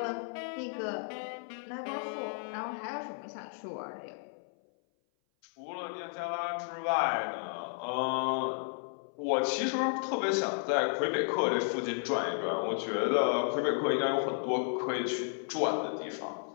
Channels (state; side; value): silent; right; 56 dB below the other